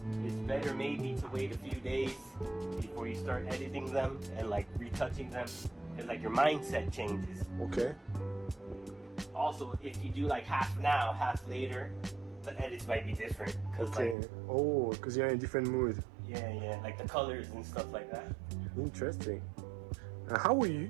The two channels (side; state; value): left; drops out; at 14.2 s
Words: it's better maybe to wait a few days before you start editing them and like retouching them, because like your mindset changes. Okay. Also, if you do like half now, half later, the edits might be different. Cause Okay. like, Oh, because you're in a different mood. yeah, like the colors and stuff like that. Interesting. How